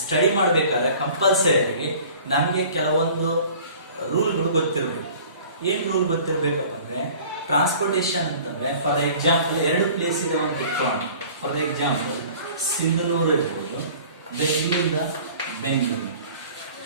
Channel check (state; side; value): inverted; both; correlation -0.47